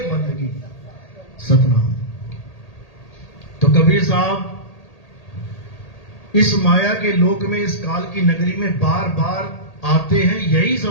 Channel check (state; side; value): late; right; 1.8 ms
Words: बंदगी, सतनाम। तो कबीर साहब इस माया के लोक में, इस काल की नगरी में बार बार आते हैं यही